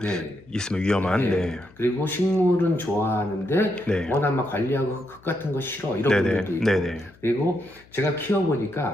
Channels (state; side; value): noise; left; hum, 27 dB below the sound